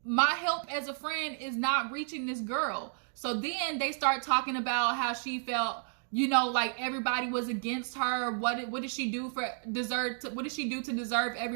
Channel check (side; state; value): left; silent; 56 dB below the other